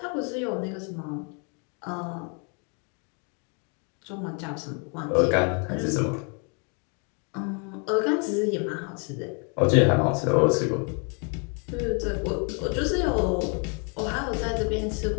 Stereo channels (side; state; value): right; quieter; 36.9 dB